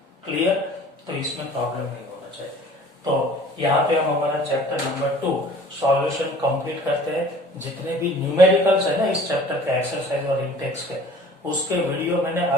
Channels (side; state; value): both; normal; correlation 0.48